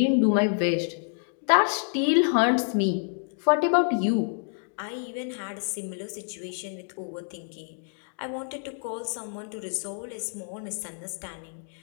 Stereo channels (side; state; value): right; silent; 60 dB below the other